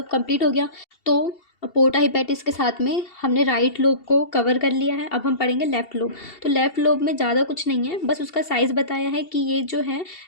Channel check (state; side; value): late; right; 2.7 ms